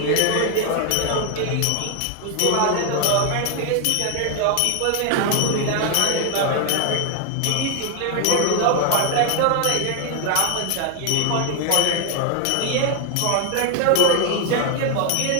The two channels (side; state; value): both; different; correlation 0.00